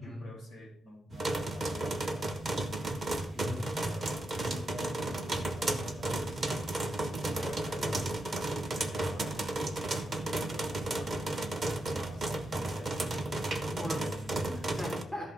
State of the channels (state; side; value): normal; both; correlation 0.86